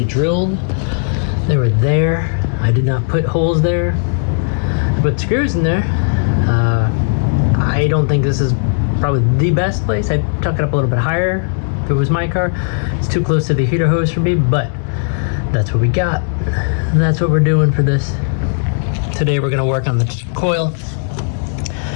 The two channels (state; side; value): silent; right; 69 dB below the other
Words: drilled. They were there. I did not put holes there. I put screws in there. I don't think this is probably the best place. I'd tuck it up a little bit higher if it was my car. It's too close to the heater hose for me, but that's what we got. That's what we're doing for this. Today we're gonna work on the coil.